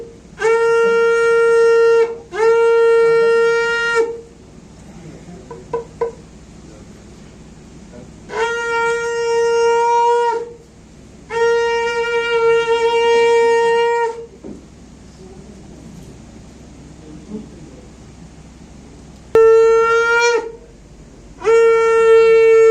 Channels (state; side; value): identical; both; correlation 1.00